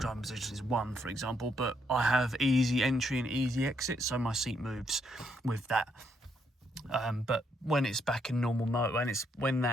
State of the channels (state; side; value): normal; both; correlation 0.74